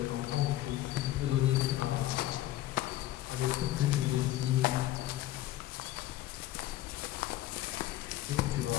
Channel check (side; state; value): right; quieter; 14.7 dB